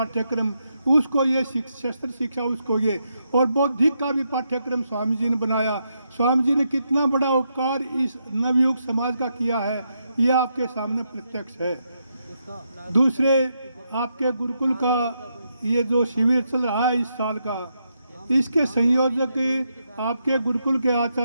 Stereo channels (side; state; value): both; inverted; correlation -0.81